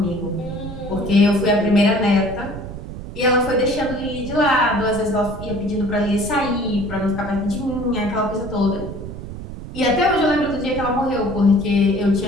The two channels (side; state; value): right; noise; rumble, 10 dB below the sound